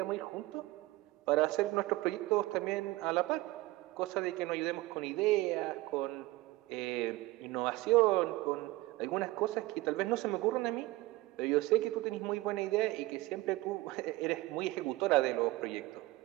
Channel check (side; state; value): left; quieter; 19.3 dB